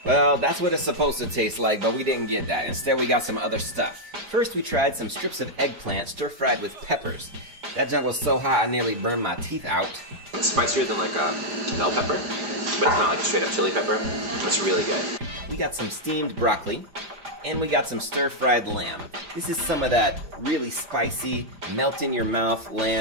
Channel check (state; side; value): late; left; 5.0 ms